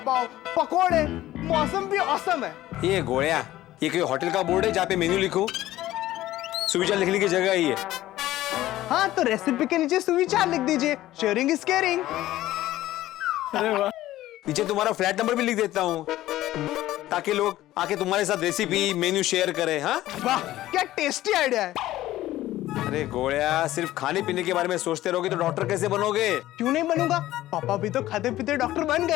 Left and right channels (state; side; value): quieter; right; 15.0 dB